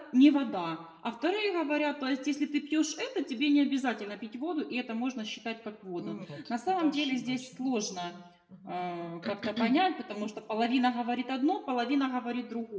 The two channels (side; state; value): both; identical; correlation 1.00